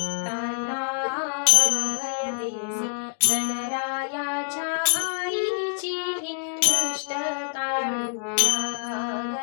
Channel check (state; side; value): silent; right; 61 dB below the other